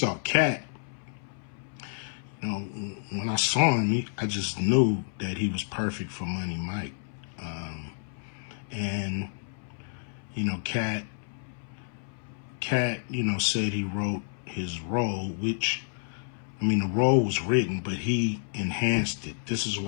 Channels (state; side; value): silent; right; 58 dB below the other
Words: Katt, when I saw him, I just knew that he was perfect for Money Mike. And, Katt, said he wrote his role, which, the role was written, but he enhanced it. This is